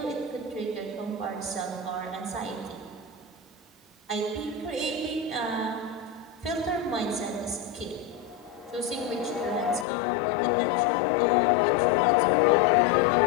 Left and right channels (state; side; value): drops out; right; at 9.9 s